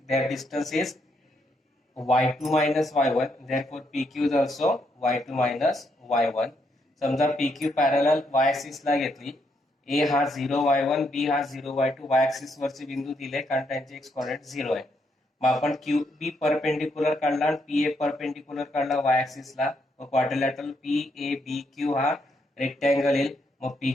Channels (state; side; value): normal; both; correlation 0.76